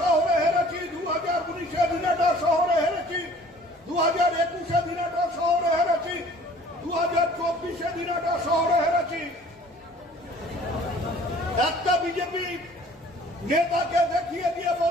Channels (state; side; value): normal; both; correlation 0.51